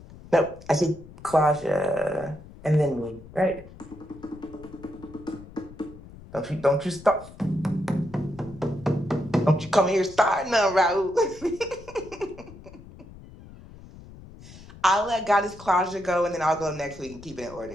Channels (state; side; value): noise; left; rumble, 18 dB below the sound